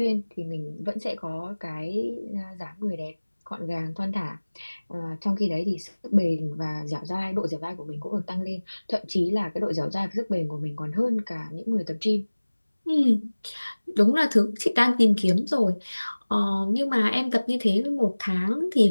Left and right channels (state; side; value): inverted; both; correlation -1.00